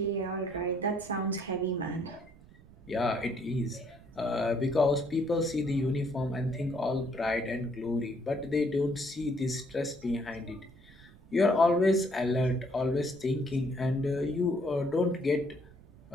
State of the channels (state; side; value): noise; right; rumble, 23 dB below the sound